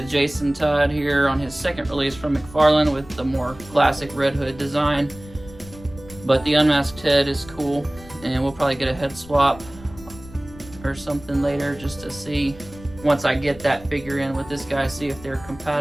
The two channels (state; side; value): noise; left; rumble, 19 dB below the sound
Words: Jason Todd here on his second release from McFarlane with the more classic Red Hood design. But the unmasked head is cool, and we'll probably get a head swap or something later just to see, once I get that figure in with this guy, see if they're